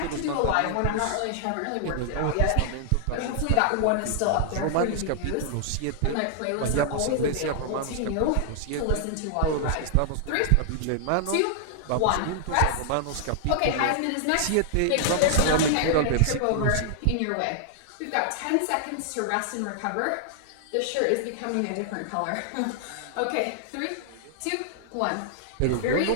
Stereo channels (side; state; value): both; different; correlation -0.01